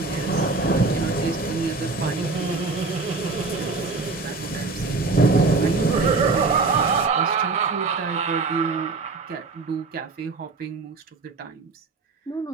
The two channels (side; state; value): left; quieter; 3.9 dB